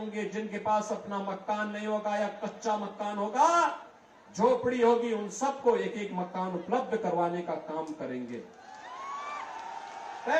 जिनके पास अपना मकान नहीं होगा या कच्चा मकान होगा, झोपड़ी होगी, उन सबको एक एक मकान उपलब्ध करवाने का काम करेंगे।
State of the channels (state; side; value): identical; both; correlation 1.00